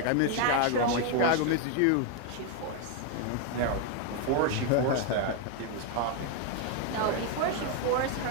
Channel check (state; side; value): different; both; correlation 0.01